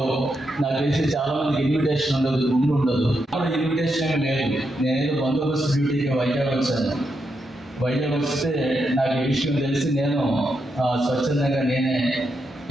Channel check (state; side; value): normal; both; correlation 0.83